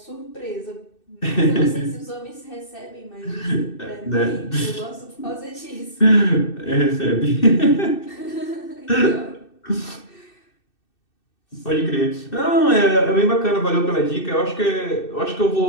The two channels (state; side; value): late; right; 2.6 ms